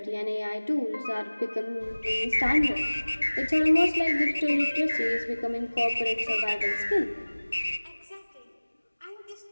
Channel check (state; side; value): inverted; both; correlation -1.00